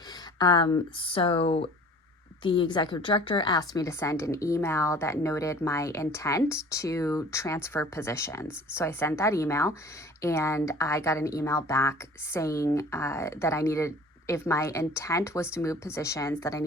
so the executive director asked me to send an email that noted my intent to transfer positions. So I sent that email, and I got an email back saying that I needed, if my intent was to move positions, that I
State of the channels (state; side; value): normal; both; correlation 0.47